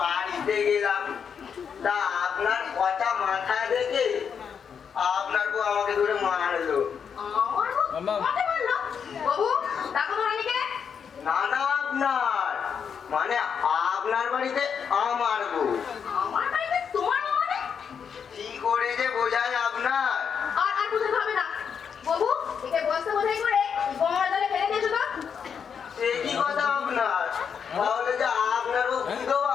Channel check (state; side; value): quieter; right; 7.0 dB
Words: গেলাম, তা আপনার কটা মাথা দেখে আপনার বউ আমাকে ধরে মারলো। আমার বউ আমাকে মারলো? বাবু, ডাকো তো রানীকে। না না আপনার মানে আপনার বাড়িতে আমার বউ। আমার বাড়িতে তোমার বউ মানে? কি করে যে বোঝায় আপনার। আর বুঝতে হবে না। বাবু, একে বস্তা বোঝাই করে গঙ্গার জলে ফেলে দিয়েছো তো? সে কি কথা আপনার, তাহলে যে আপনার বউ বিধবা